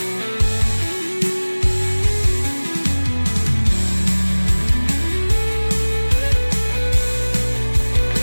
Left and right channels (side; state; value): both; inverted; correlation -1.00